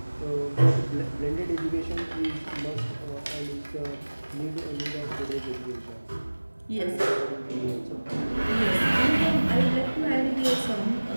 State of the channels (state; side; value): inverted; both; correlation -1.00